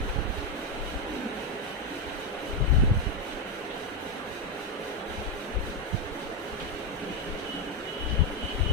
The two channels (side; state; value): both; normal; correlation 0.05